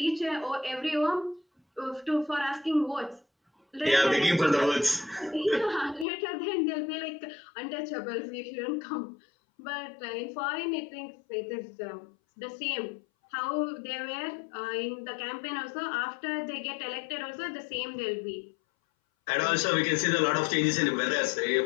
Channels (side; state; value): right; drops out; at 6.1 s